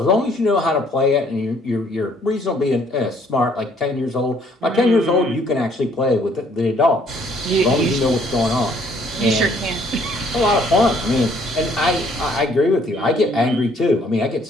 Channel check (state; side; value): normal; both; correlation 0.63